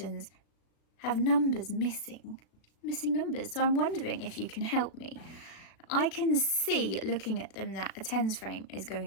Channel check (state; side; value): late; right; 36 ms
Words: have numbers missing numbers. So I'm wondering if you can help me. I can see looking at them that a tens frame is